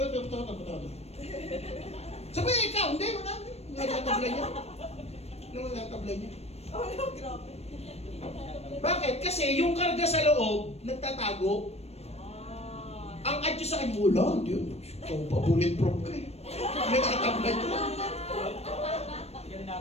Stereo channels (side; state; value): right; late; 0.31 ms